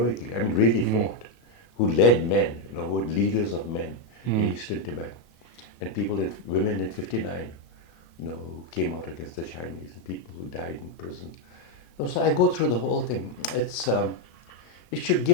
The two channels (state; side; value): late; right; 33 ms